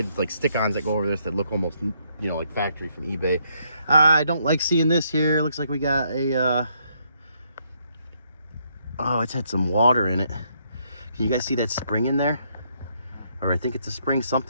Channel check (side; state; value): both; inverted; correlation -0.73